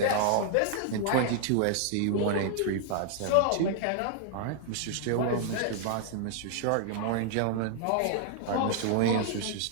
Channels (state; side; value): different; both; correlation 0.00